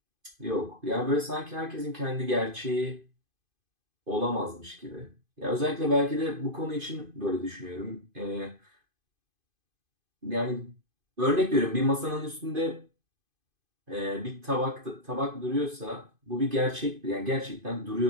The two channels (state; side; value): late; left; 2.5 ms